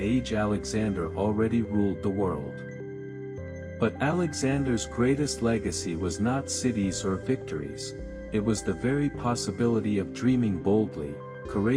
Alexander already ruled the world. But Alexander's greatest legacy was not cities or victories, it was the very possibility of dreaming boldly,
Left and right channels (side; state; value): both; identical; correlation 1.00